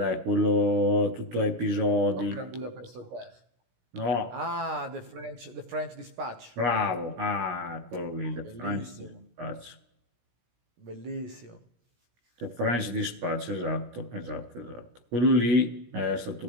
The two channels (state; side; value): late; left; 17 ms